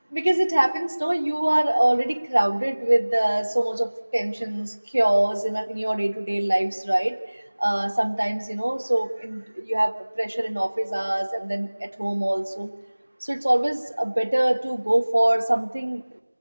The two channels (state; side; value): inverted; both; correlation -1.00